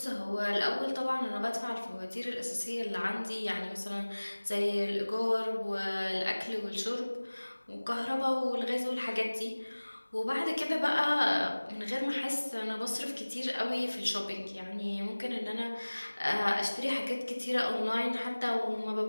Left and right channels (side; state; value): both; inverted; correlation -1.00